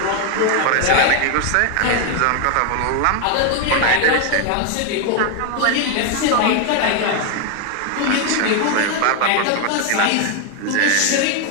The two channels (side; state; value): both; different; correlation 0.00